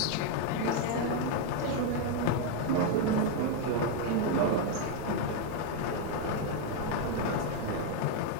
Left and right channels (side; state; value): both; different; correlation 0.01